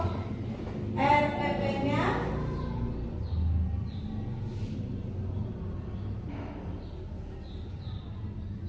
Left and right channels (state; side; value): identical; both; correlation 1.00